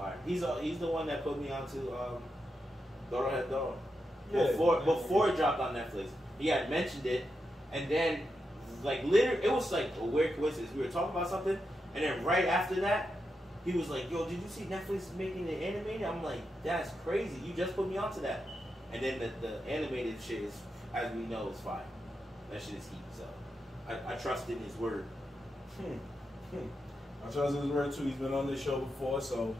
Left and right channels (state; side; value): normal; both; correlation 0.86